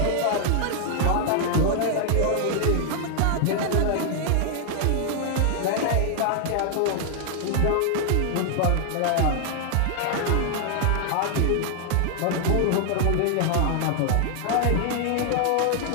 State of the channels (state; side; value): different; both; correlation 0.00